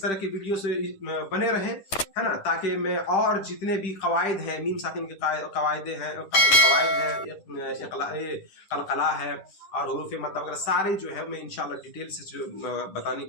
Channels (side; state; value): right; late; 10 ms